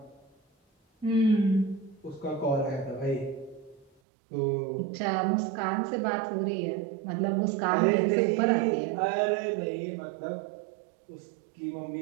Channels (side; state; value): left; drops out; at 3.9 s